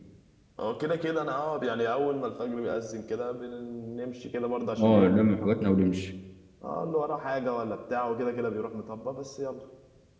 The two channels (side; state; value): both; identical; correlation 1.00